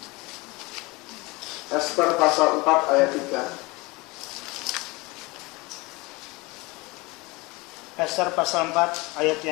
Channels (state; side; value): quieter; right; 24.5 dB